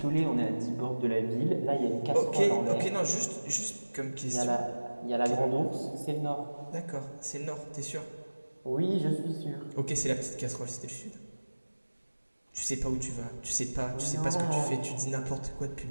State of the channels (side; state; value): both; inverted; correlation -1.00